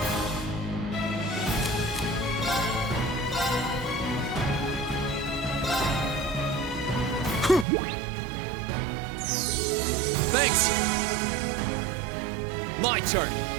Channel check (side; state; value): left; drops out; at 7.7 s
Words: Thanks! My turn!